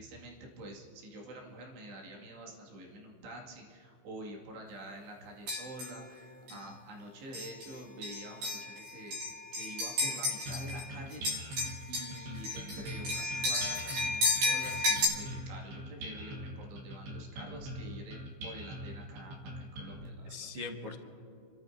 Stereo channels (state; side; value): late; left; 15 ms